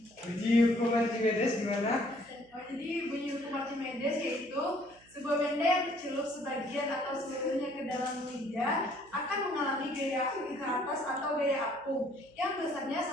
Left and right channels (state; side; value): noise; right; hum, 29 dB below the sound